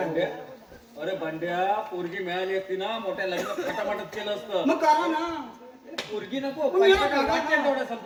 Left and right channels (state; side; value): identical; both; correlation 1.00